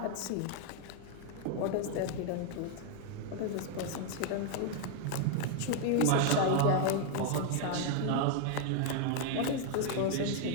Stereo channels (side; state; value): both; different; correlation 0.00